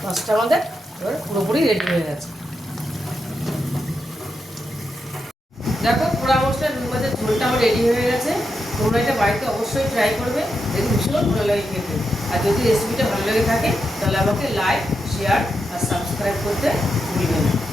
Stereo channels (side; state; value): both; normal; correlation 0.85